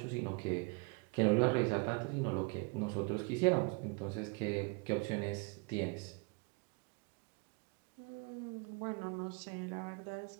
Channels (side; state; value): left; quieter; 32.0 dB